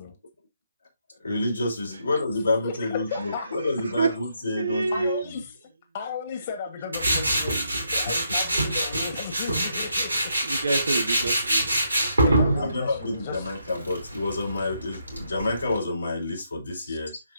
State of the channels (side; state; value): both; inverted; correlation -0.77